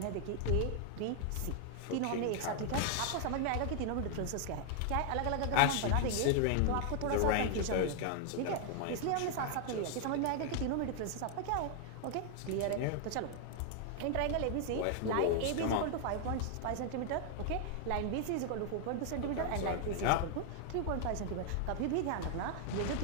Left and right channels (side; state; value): both; different; correlation 0.00